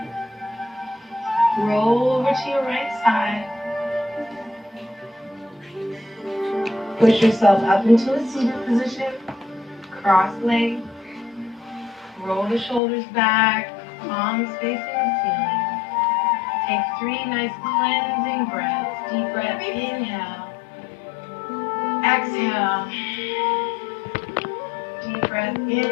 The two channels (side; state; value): right; drops out; at 12.8 s